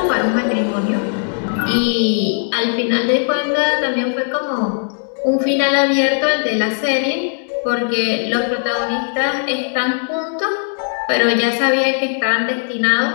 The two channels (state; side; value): silent; right; 58 dB below the other